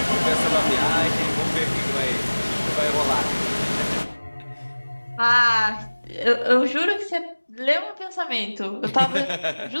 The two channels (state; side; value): inverted; both; correlation -1.00